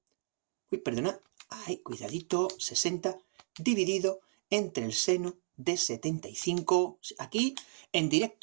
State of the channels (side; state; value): left; silent; digital silence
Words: Uy, perdona. Ay, cuidadito. 60 dividido entre el seno de 75. Aquí, en